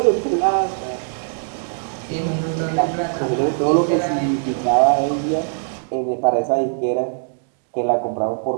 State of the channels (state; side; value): silent; left; digital silence